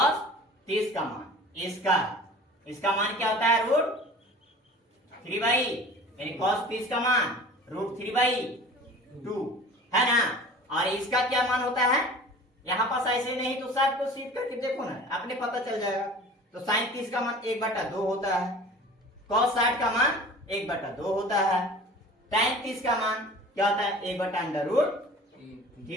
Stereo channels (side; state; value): both; normal; correlation 0.42